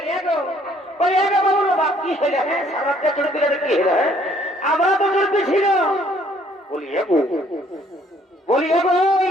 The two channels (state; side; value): normal; both; correlation 0.62